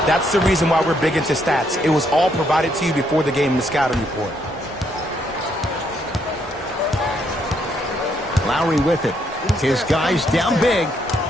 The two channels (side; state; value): both; normal; correlation 0.73